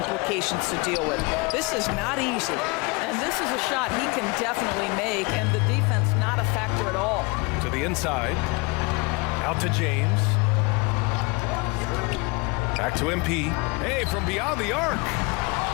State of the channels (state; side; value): quieter; right; 27.7 dB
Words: to deal with. This is not easy. And this is a shot he can definitely make, and the defense not a factor at all. To the inside. Out to James. Back to MP. Hey, from beyond the arc.